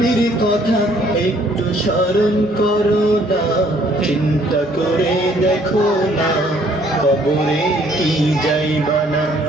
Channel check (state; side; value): normal; both; correlation 0.62